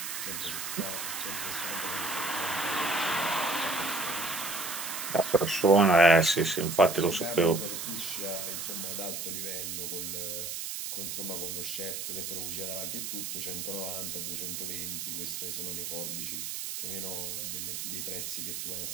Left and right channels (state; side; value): noise; right; hiss, 4 dB below the sound